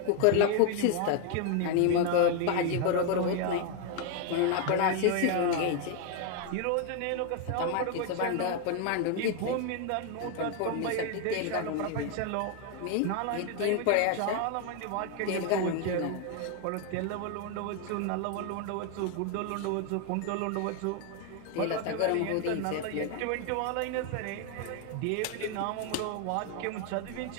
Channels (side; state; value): both; different; correlation 0.01